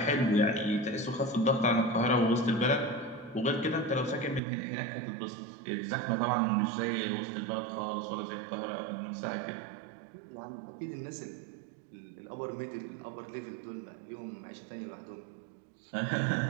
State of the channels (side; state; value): left; drops out; at 4.4 s